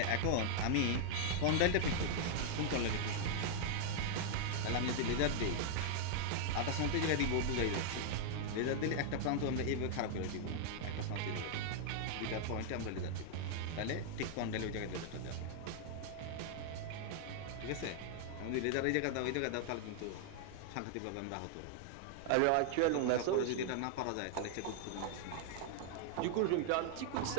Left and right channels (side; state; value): both; different; correlation 0.00